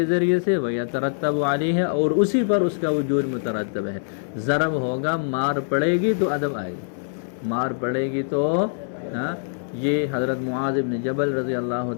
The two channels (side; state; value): right; silent; digital silence